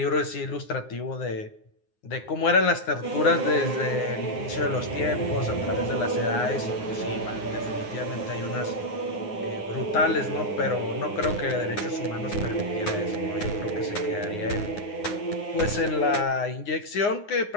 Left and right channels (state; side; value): late; right; 9.6 ms